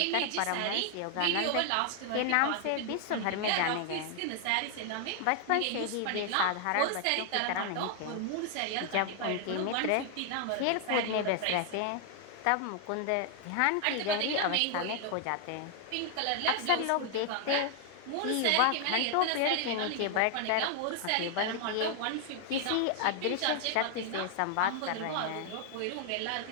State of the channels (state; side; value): different; both; correlation 0.00